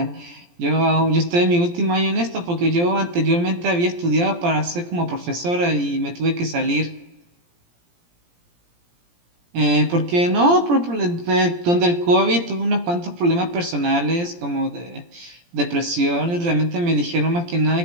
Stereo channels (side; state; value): left; late; 17 ms